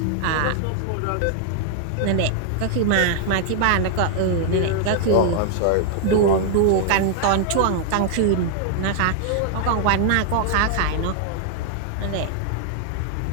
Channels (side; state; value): both; different; correlation 0.00